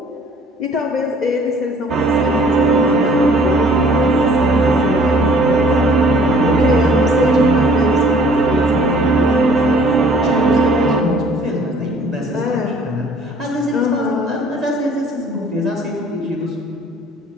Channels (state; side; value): normal; both; correlation 0.54